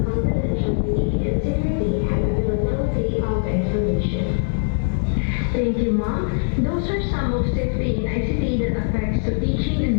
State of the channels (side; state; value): right; silent; digital silence